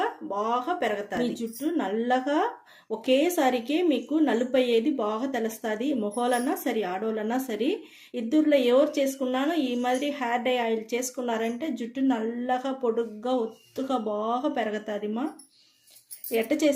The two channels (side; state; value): both; identical; correlation 1.00